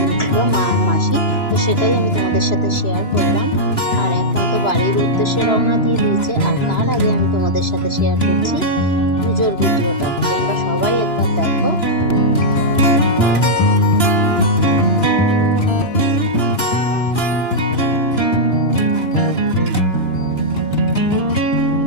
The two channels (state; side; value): late; right; 2.9 ms